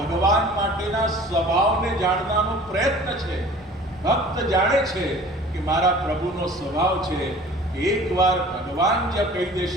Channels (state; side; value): normal; both; correlation 0.46